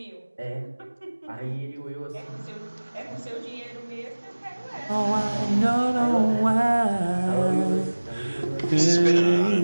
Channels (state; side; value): inverted; both; correlation -1.00